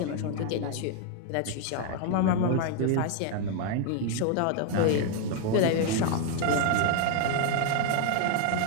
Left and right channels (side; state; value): both; different; correlation 0.01